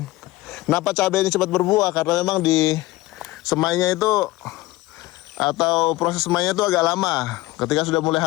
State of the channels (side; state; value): right; quieter; 18.5 dB